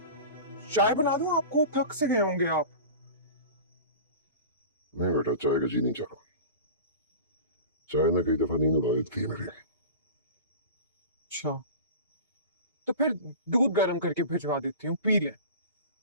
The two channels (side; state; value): both; inverted; correlation -0.35